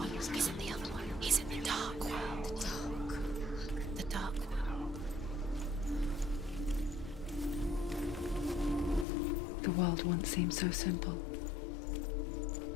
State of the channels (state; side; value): drops out; right; at 9.1 s